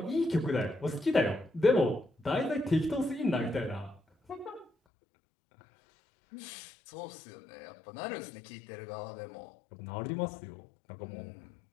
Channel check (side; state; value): right; drops out; at 4.7 s